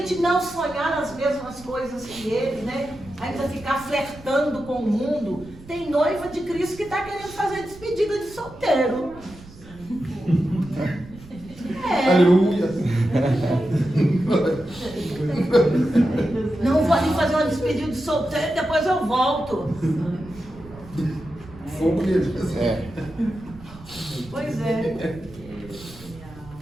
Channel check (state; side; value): noise; right; rumble, 20 dB below the sound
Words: não sonhar as mesmas coisas que Ele, né? Ainda ficar flertando com o mundo. Tem noiva de Cristo que está querendo fazer despedida de solteiro. Aleluia. Não vou ali fazer uma despedida de solteiro, depois eu volto. Fogo nele. Pois é.